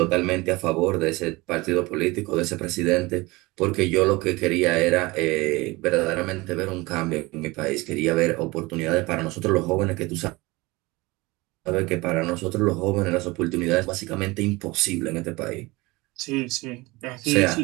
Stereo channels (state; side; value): quieter; left; 22.6 dB